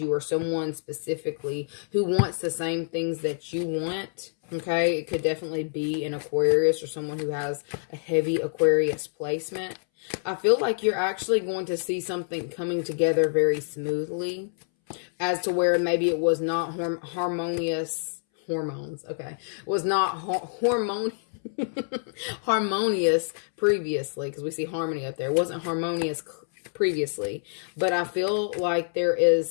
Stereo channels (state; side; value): silent; right; 60 dB below the other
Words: or someone specifically who wants the same things that you want. Okay, it could definitely be an Aquarius or someone who has a heavy Aquarius placement. I feel like you're actually going to see something coming together very smoothly, as to where maybe it was not harmonious. Hormones, okay. Was not harmonious previously, because we see harmony up there. It wasn't harmonious previously, but I feel like there